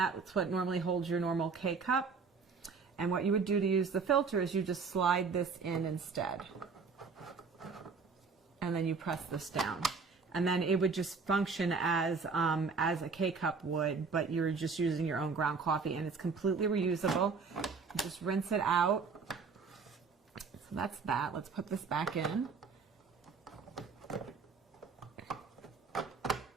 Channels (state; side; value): quieter; left; 5.0 dB